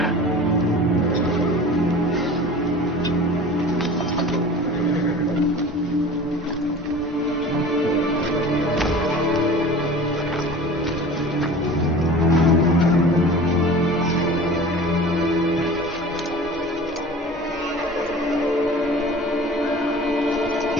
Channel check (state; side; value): normal; both; correlation 0.40